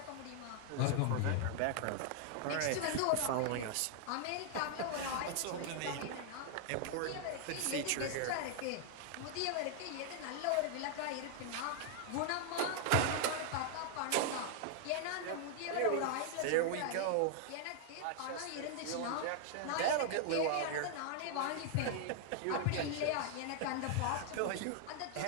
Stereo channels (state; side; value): different; both; correlation 0.00